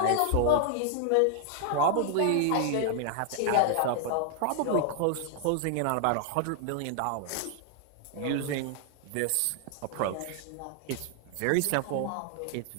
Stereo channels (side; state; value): both; different; correlation 0.00